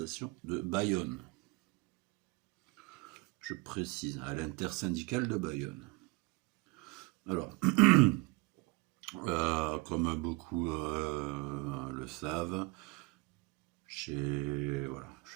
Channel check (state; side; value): quieter; left; 25.0 dB